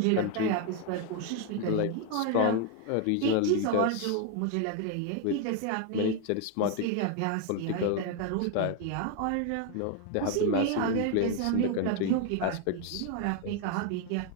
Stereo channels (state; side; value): different; both; correlation 0.01